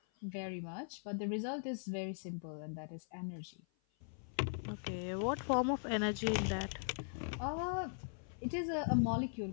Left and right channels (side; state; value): right; silent; 51 dB below the other